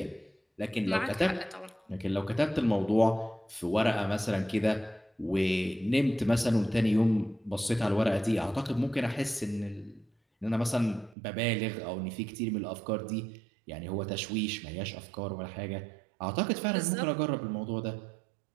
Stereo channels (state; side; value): drops out; left; at 11.2 s